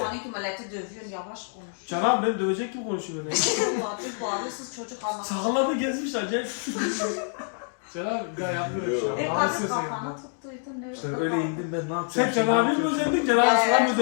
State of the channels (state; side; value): silent; right; 60 dB below the other